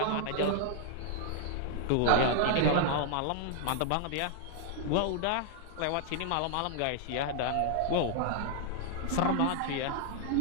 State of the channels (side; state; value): both; different; correlation -0.01